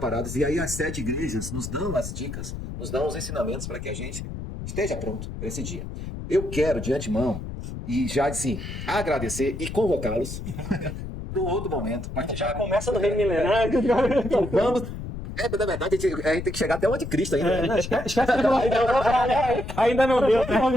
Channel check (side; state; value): left; noise; rumble, 8 dB below the sound